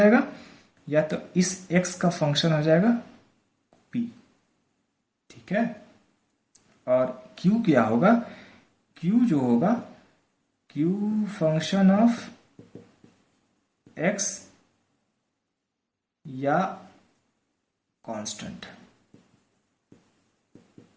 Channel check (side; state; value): both; identical; correlation 1.00